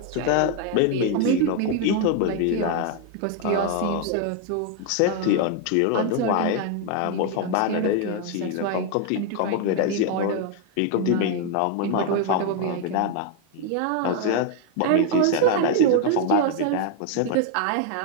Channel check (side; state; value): both; different; correlation 0.01